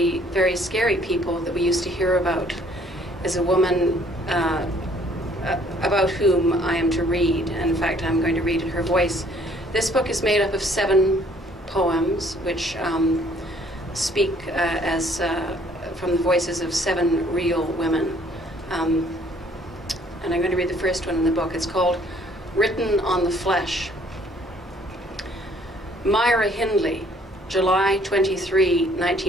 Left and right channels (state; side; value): normal; both; correlation 0.60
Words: very scary people that we used to hear about is a woman about whom I am to read. In fact, I'm going to read in her voice. This book is made up of 7 poems, which speak from the voices of 7 real women. And I'm going to read the first one in the book. It's called Written on the Flesh. Myra Hindley, July 23,